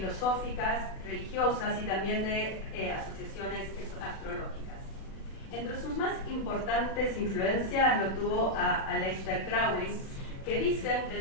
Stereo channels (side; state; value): right; late; 36 ms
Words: religiosas y también de asociaciones astrológicas. Entre sus más importantes influencias lo tuvo a Aleister Crowley, que dicen que